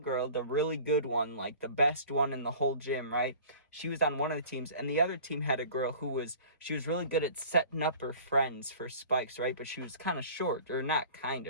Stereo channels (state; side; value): inverted; both; correlation -0.44